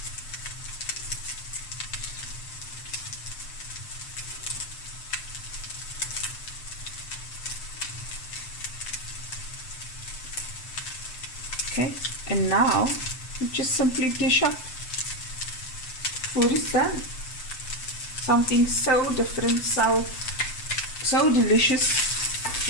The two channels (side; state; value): right; late; 7.8 ms